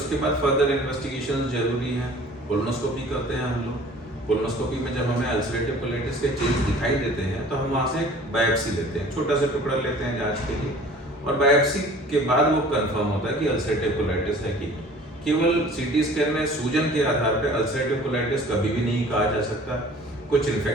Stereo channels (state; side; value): normal; both; correlation 0.48